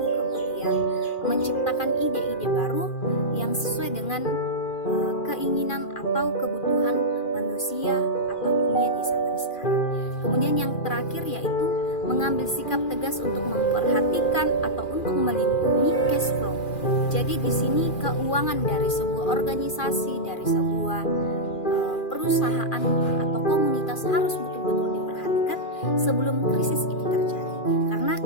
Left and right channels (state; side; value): late; right; 2.4 ms